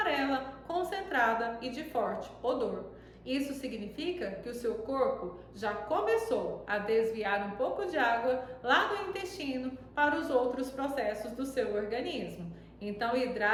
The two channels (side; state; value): both; identical; correlation 1.00